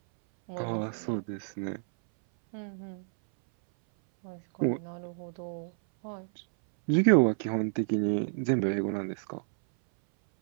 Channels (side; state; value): left; silent; 58 dB below the other